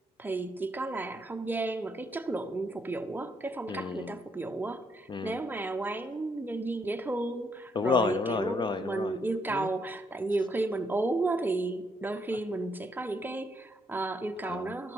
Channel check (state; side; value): normal; both; correlation 0.75